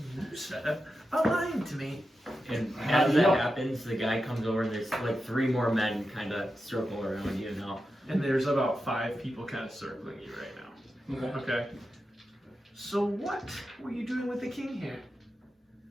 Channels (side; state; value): both; normal; correlation 0.90